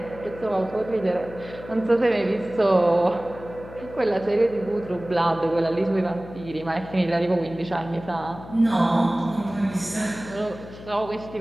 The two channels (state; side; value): noise; left; hum, 15 dB below the sound